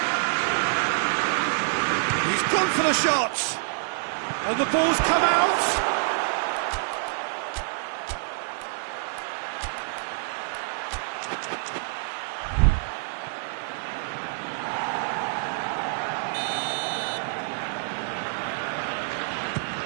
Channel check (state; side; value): silent; left; 60 dB below the other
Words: He's gone for the shot! And the ball's come out!